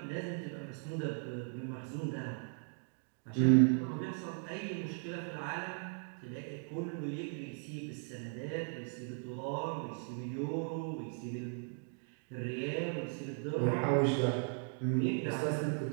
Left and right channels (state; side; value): silent; left; 53 dB below the other